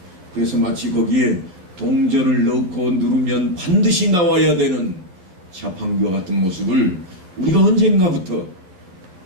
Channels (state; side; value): late; left; 11 ms